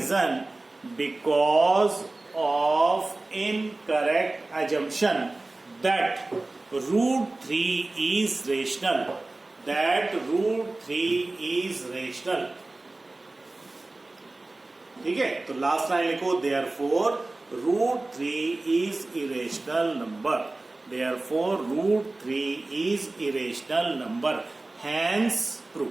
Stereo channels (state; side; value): quieter; left; 3.0 dB